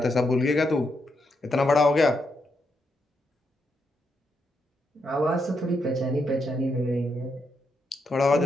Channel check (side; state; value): both; normal; correlation 0.81